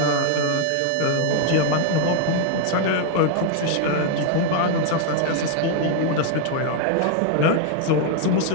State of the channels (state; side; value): different; both; correlation 0.00